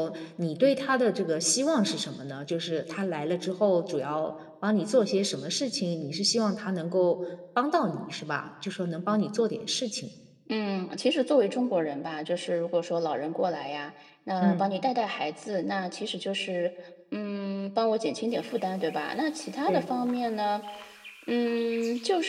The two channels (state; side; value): identical; both; correlation 1.00